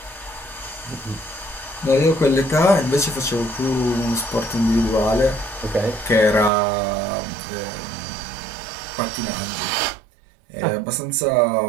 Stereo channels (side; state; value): left; drops out; at 6.5 s